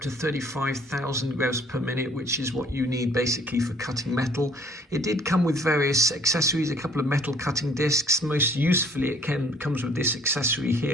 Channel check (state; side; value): normal; both; correlation 0.57